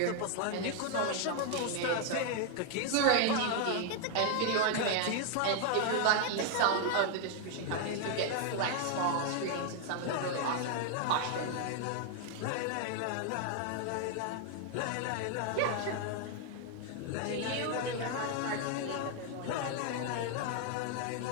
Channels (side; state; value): both; different; correlation 0.00